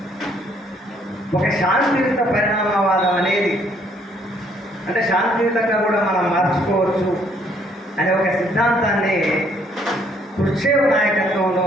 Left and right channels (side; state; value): both; normal; correlation 0.66